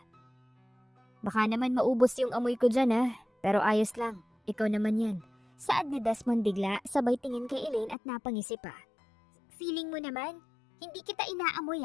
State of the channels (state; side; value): drops out; right; at 8.0 s